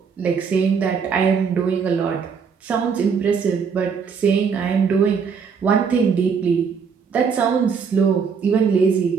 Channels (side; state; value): left; quieter; 6.1 dB